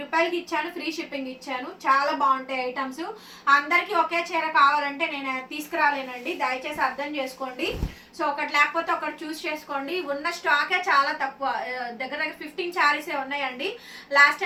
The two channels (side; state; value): both; identical; correlation 1.00